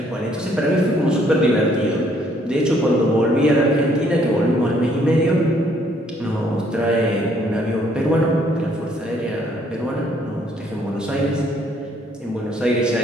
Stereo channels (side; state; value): both; normal; correlation 0.66